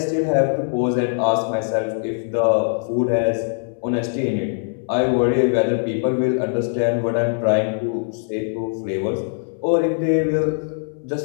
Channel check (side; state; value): right; silent; 65 dB below the other